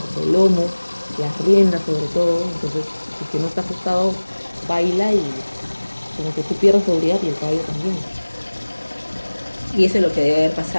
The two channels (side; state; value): both; inverted; correlation -1.00